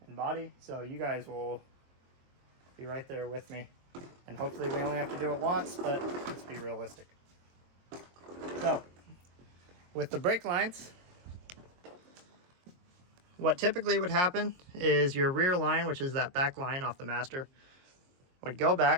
and body. So you guys will be right there with me. And hopefully we only have to do it once, but let's be realistic. So with the brake lines, what typically would happen is your rear line, which is that back line off the master, would go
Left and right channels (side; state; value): left; late; 22 ms